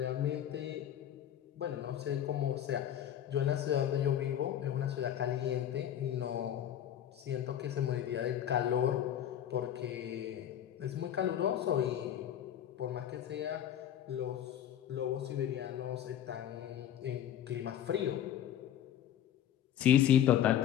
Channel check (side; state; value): right; quieter; 10.6 dB